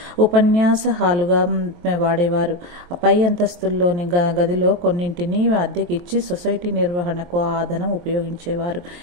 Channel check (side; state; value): left; late; 23 ms